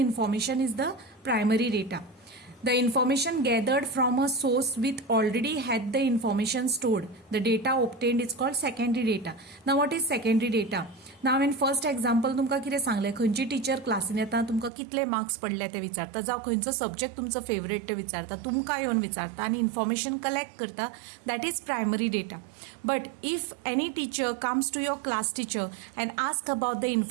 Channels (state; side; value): drops out; left; at 14.7 s